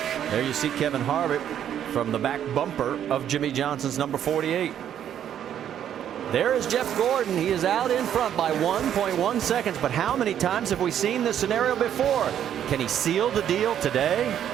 There you see Kevin Harvick from the back bumper of Jimmy Johnson's number 48. There is Jeff Gordon. He is out in front by 1.1 seconds. But how many times have we seen this scenario before? Can he seal the deal today?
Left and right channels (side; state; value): left; quieter; 9.9 dB